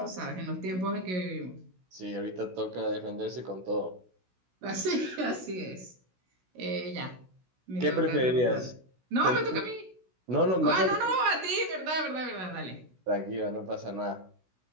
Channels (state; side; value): late; left; 16 ms